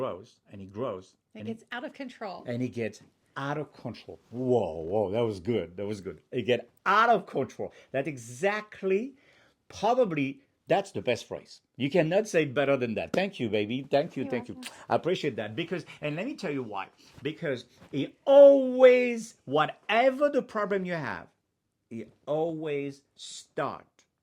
and it grows It gets out of control. and it gets out of control. Whoa, whoa, that was good. That was good. It get out of control. That's exactly, probably, that's the best phrase. You cannot say it better than that. Thank you, baby. Thank you, You're thank you. welcome. I appreciate that because, and let me tell you why. Because it always, whatever the problem you have, it always start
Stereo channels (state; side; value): identical; both; correlation 1.00